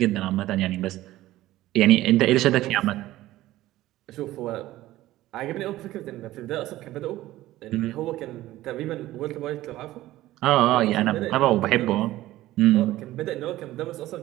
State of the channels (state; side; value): quieter; left; 15.8 dB